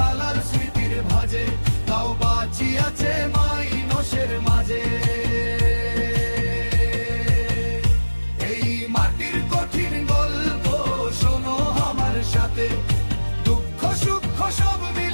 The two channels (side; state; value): both; inverted; correlation -1.00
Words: লাল স্মৃতির ভাজে, তাও বাঁচি আছে মাইনষের মাঝে। এই মাটির কঠিন গল্প শোনো আমার সাথে, দুঃখ সুখ সব